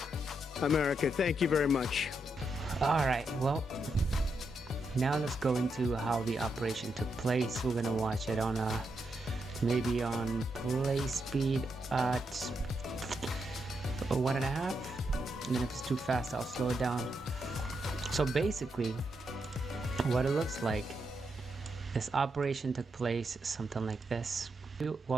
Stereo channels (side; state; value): both; normal; correlation 0.82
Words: America. Thank you very much. All right, well, now let's go into how the operation took place. We're gonna watch it on maybe on play speed at 1.5, and then if it's too fast, I'll slow it down. So basically, what it looks like, this operation took place something like this.